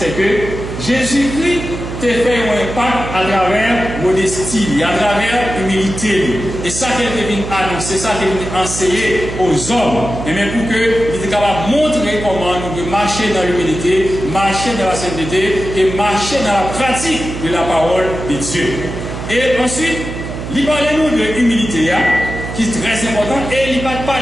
que Jésus-Christ t'a fait un impact à travers modestie, à travers humilité. Et ça qu'il est venu annoncer, ça qu'il est venu enseigner aux hommes, et même pour qu'il était capable de montrer comment nous devons marcher dans l'humilité, marcher dans la sainteté et marcher dans la pratique de la parole de Dieu. Et ensuite, il parlait nous de l'humilité, qui est très important, et il ne parle pas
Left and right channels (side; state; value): right; noise; hum, 7 dB below the sound